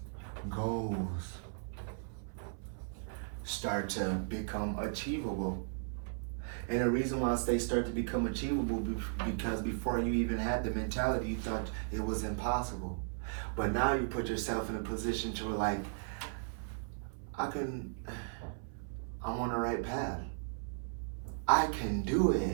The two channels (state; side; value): silent; left; 54 dB below the other